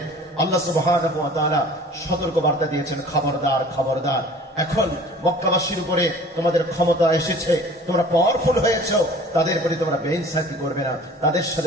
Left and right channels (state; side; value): normal; both; correlation 0.47